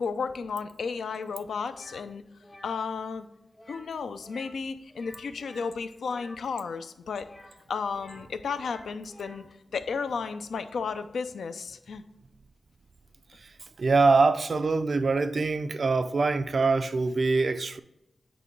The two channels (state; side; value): normal; both; correlation 0.89